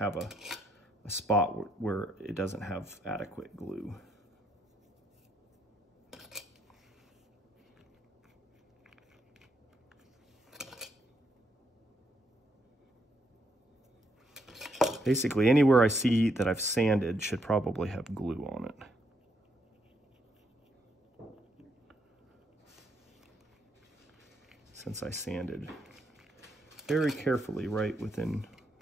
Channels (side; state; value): both; normal; correlation 0.75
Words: a spot where it doesn't have adequate glue. Basically, anywhere I see that I've sanded should probably have glue on it. Since I sanded very carefully right within